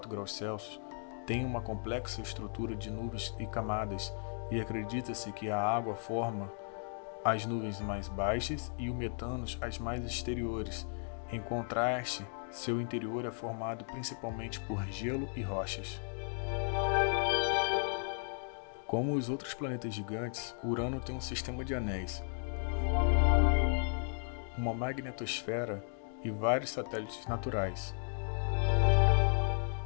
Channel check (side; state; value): right; silent; 54 dB below the other